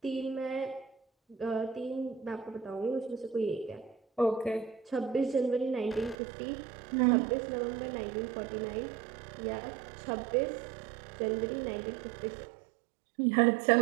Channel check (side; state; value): left; drops out; at 6.2 s